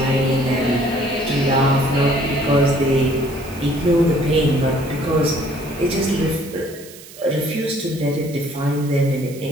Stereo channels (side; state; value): right; noise; hiss, 18 dB below the sound